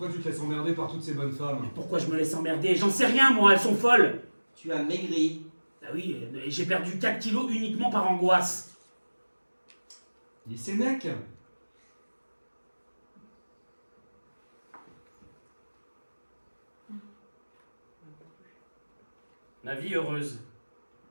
tu te laisses emmerder par toutes ces bonnes femmes? Mais pourquoi je me laisse emmerder? J'en sais rien, moi, elles sont folles. Tu as maigri. Ah oui, et j'ai perdu 4 kilos uniquement par angoisse. Il est Sénèque. La vie heureuse.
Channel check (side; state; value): both; inverted; correlation -1.00